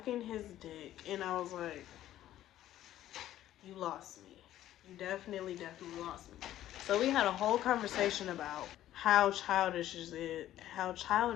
his dick. And I was like, you lost me. You definitely lost me. So we had a whole conversation about how childish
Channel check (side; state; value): right; quieter; 13.0 dB